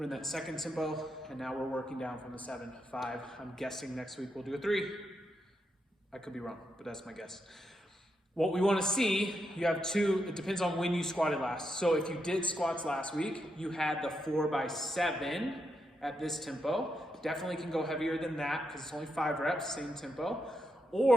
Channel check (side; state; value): both; normal; correlation 0.83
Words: in that second tempo, and now we're working down from the 7, 5. I'm guessing next week we'll do a 3. I could be wrong, but that's my guess. What we want to see, you have 2, it depends on when you squatted last. So if you did squats last week, you had the 4x7 at this tempo. Definitely can go heavier than that because it's only 5 reps, same tempo.